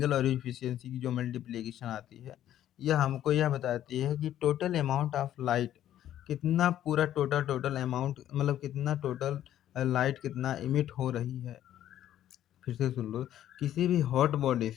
और इफिशियंसी की जो मल्टीप्लिकेशन आती है, यह हमको यह बताती है कि टोटल अमाउंट ऑफ लाइट कितना, पूरा टोटल अमाउंट मतलब कितना टोटल लाइट कितना इमिट हो रही है। फिर से सुन लो, किसी भी हॉट बॉडी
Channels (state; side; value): quieter; right; 11.8 dB